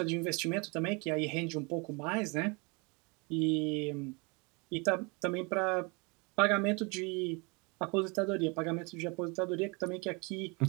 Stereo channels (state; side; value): quieter; left; 30.0 dB